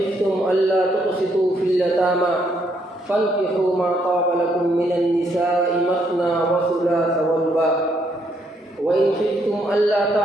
أَلَّا تُقْسِطُوا فِي الْيَتَامَىٰ فَانكِحُوا مَا طَابَ لَكُم مِّنَ النِّسَاءِ مَثْنَىٰ وَثُلَاثَ وَرُبَاعَ وَإِنْ خِفْتُمْ أَلَّا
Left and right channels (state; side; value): normal; both; correlation 0.73